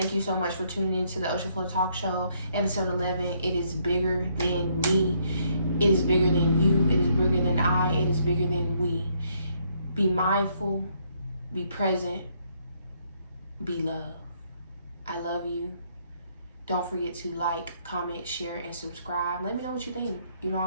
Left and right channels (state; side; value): inverted; both; correlation -0.70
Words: you so much for tuning into the Ocean Flow Talk Show, episode 11. It is bigger than me. It is bigger than you. It is bigger than I. It is bigger than we. Be mindful. Be present. Be love. I love you. Don't forget to like, comment, share, and subscribe. Let me know what you think.